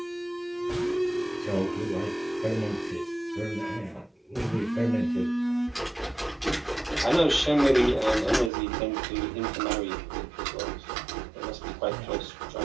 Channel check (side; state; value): left; drops out; at 8.5 s